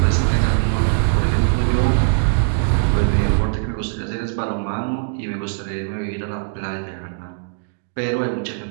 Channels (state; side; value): silent; left; digital silence